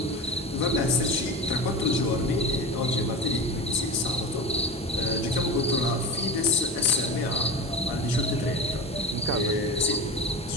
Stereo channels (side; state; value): both; normal; correlation 0.28